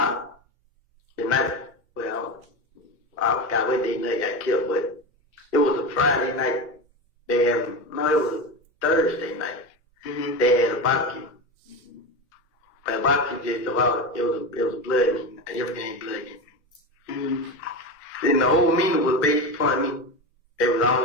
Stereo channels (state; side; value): normal; both; correlation 0.21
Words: the night. Well, I forgot what day they got killed, but it was a Friday night. It was a Thursday night. Mm-hmm. They had a barbecue. But a barbecue just about, it was a blood meeting. Everything ain't blood meeting. Mm-hmm. And the whole meeting was based upon me. They was all